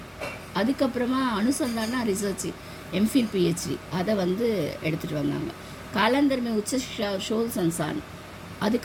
அதுக்கப்புறமா அனுசந்தானா ரிசர்ச் எம்ஃபில் பிஹெச்டி அதை வந்து எடுத்துகிட்டு வந்தாங்க. காலந்தர் மே உச்ச சிக்ஷா ஷோல் சன்சான்,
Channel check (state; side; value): identical; both; correlation 1.00